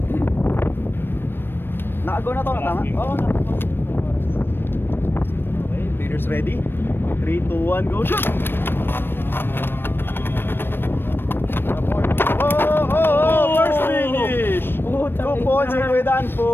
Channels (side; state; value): right; late; 0.099 ms